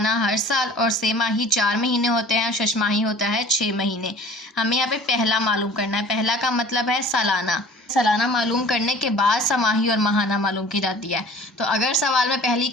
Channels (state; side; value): normal; both; correlation 0.46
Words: हर साल, और सेमाही 4 महीने होते हैं, शशमाही होता है 6 महीने। हमें यहाँ पे पहला मालूम करना है। पहला का मतलब है सालाना। सालाना मालूम करने के बाद समाही और माहाना मालूम की जाती है। तो अगर सवाल में पहली